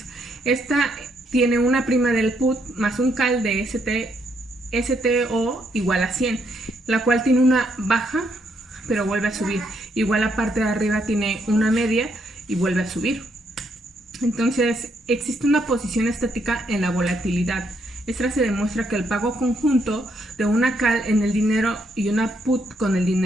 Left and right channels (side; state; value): both; normal; correlation 0.75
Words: Esta tiene una prima del put más un call de STO igual a 100, la cual tiene una baja pero vuelve a subir. Igual la parte de arriba tiene una media y vuelve a subir. Entonces existe una posición estática en la volatilidad. Esta se demuestra que el pago conjunto de una call en el dinero y una put con el